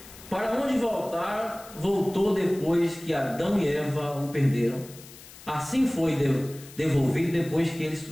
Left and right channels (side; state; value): left; noise; hiss, 19 dB below the sound